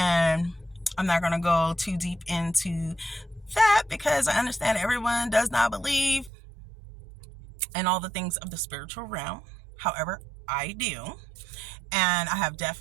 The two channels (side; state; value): left; drops out; at 6.3 s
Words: I'm not going to go too deep into that because I understand everyone does not believe in all the things of the spiritual realm. However, I do. And I have